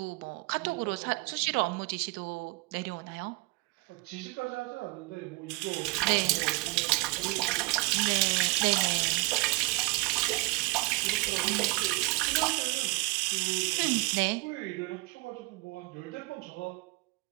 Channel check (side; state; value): left; quieter; 25.2 dB